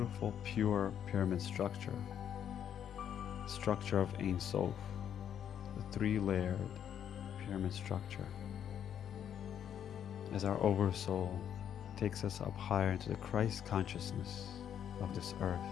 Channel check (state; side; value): quieter; right; 9.2 dB